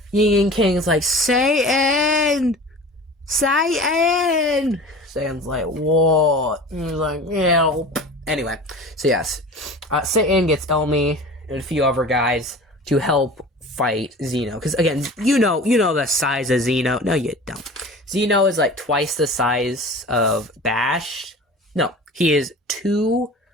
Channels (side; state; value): both; normal; correlation 0.38